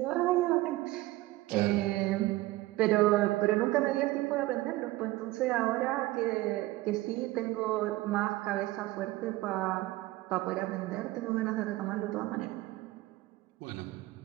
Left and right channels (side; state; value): left; quieter; 18.3 dB